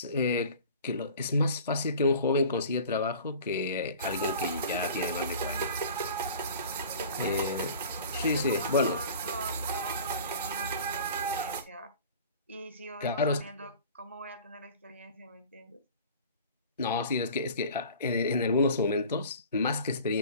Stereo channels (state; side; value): inverted; both; correlation -0.42